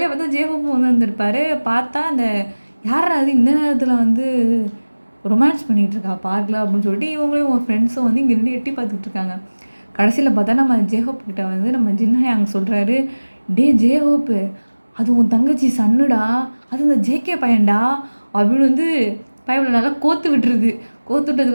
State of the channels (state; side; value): inverted; both; correlation -1.00